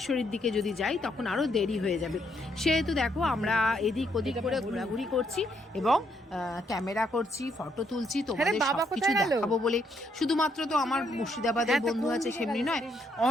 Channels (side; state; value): both; normal; correlation 0.74